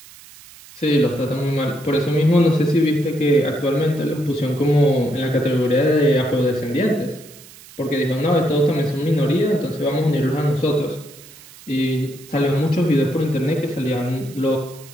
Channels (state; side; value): noise; right; hiss, 21 dB below the sound